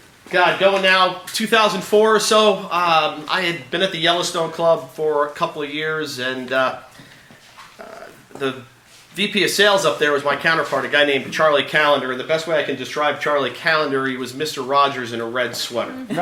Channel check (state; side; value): identical; both; correlation 1.00